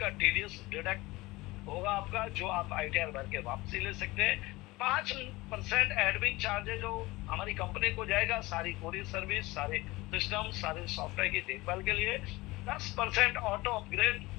का टीडीएस डिडक्ट होगा आपका, जो आप आईटीआर भर के वापसी ले सकते हैं। 5% एडमिन चार्जेज जो हमारी कंपनी को जाएगा, सारी कोरियर सर्विस, सारे सिस्टम, सारे सॉफ्टवेयर की देखभाल के लिए। 10% ऑटो अपग्रेड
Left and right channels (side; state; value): right; quieter; 20.9 dB